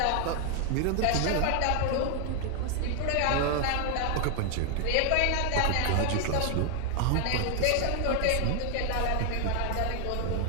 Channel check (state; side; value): different; both; correlation 0.00